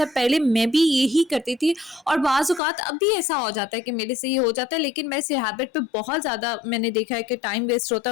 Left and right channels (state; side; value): drops out; right; at 2.6 s